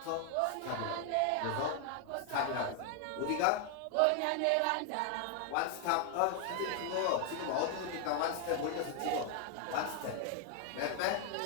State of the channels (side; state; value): both; different; correlation 0.00